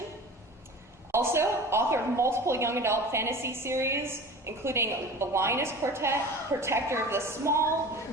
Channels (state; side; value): normal; both; correlation 0.37